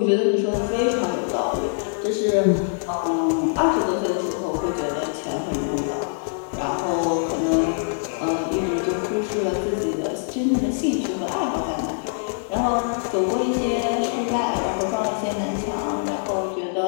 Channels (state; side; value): silent; right; digital silence